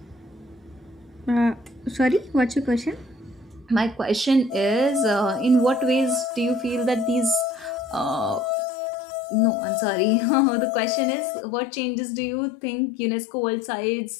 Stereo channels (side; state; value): right; drops out; at 8.6 s